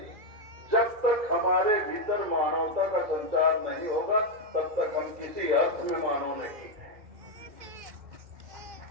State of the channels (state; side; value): late; left; 2.1 ms